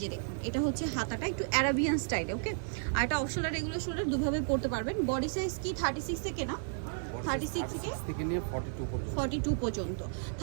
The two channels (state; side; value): silent; left; 56 dB below the other